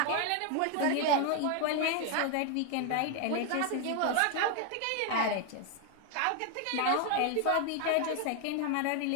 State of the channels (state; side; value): different; both; correlation 0.01